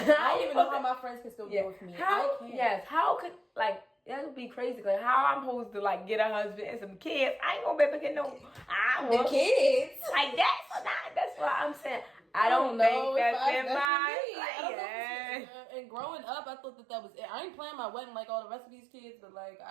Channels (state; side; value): drops out; left; at 13.9 s